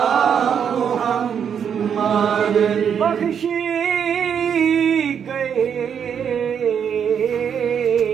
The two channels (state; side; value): quieter; left; 7.8 dB